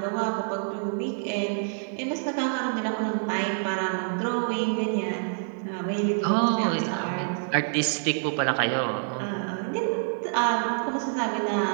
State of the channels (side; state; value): left; silent; 60 dB below the other